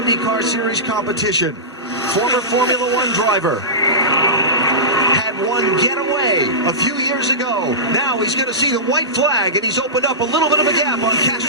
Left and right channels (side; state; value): both; normal; correlation -0.18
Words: Series competition. Former Formula One driver. Had one getaway a few years ago. Now he's going to see the white flag, and he's opened up a little bit of a gap on